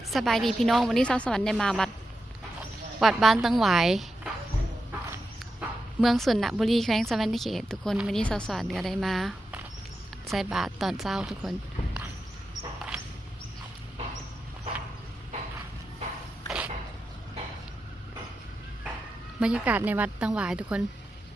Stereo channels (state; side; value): normal; both; correlation 0.89